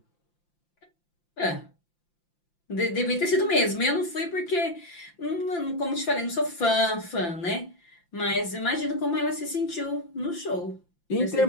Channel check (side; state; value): right; late; 5.8 ms